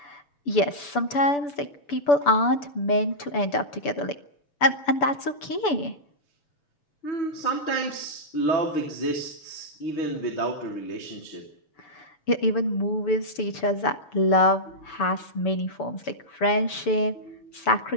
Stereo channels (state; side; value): late; right; 6.9 ms